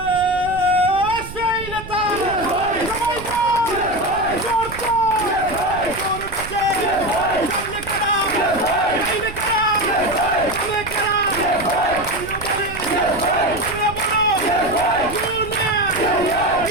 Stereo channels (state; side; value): noise; right; rumble, 13 dB below the sound